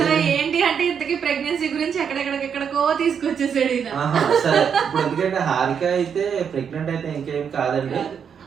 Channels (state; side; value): quieter; left; 7.3 dB